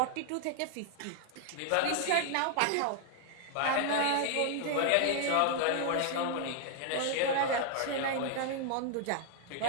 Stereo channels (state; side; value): different; both; correlation 0.00